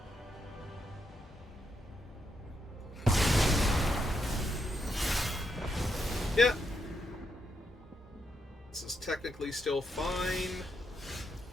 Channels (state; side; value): normal; both; correlation 0.80